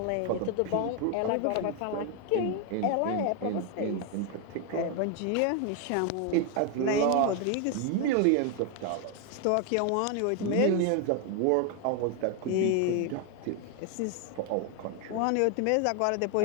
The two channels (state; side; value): different; both; correlation 0.01